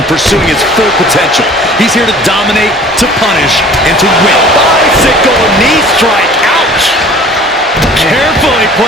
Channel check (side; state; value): both; normal; correlation 0.48